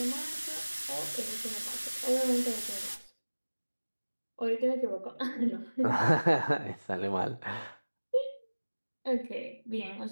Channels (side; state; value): both; inverted; correlation -1.00